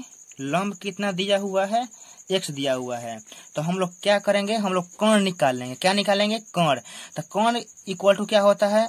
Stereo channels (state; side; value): identical; both; correlation 1.00